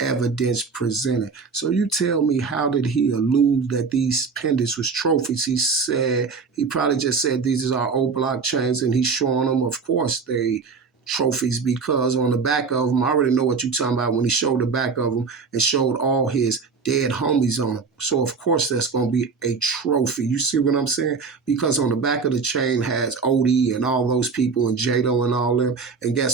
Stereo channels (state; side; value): quieter; left; 5.1 dB